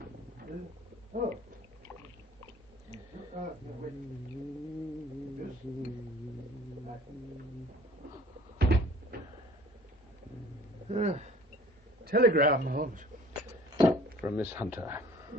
Oh. Telegram, Holmes. From Miss Hunter.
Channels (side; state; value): both; normal; correlation 0.50